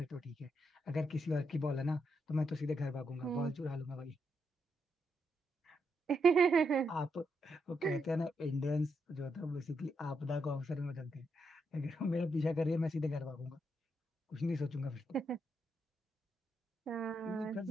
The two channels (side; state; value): both; normal; correlation 0.80